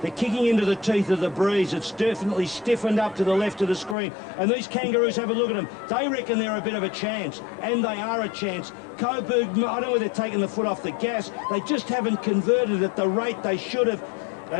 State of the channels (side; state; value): right; drops out; at 4.0 s